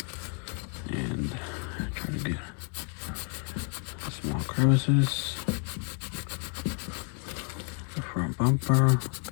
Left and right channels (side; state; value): right; quieter; 38.7 dB